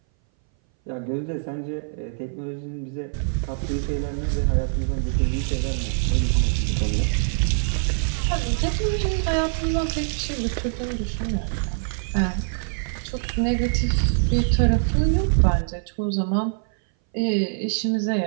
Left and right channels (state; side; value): silent; left; 59 dB below the other